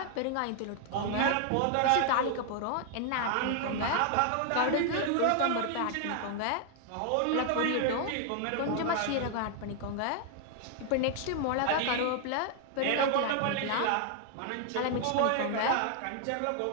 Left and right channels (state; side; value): different; both; correlation 0.00